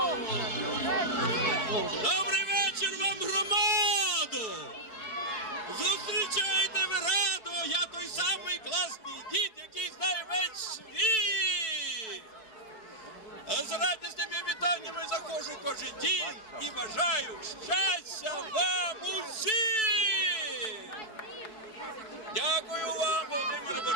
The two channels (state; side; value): late; right; 4.6 ms